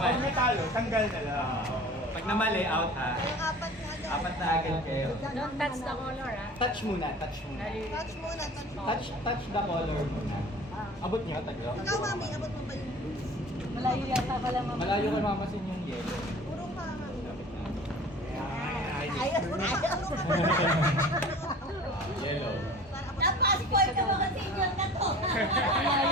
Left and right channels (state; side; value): normal; both; correlation 0.43